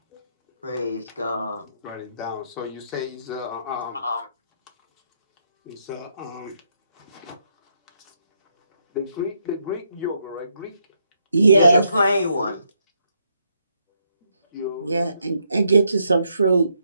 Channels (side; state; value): both; inverted; correlation -0.76